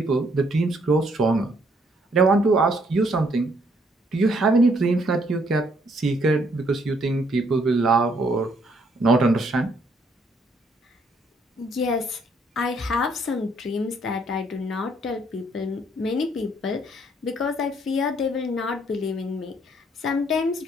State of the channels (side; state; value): both; normal; correlation 0.68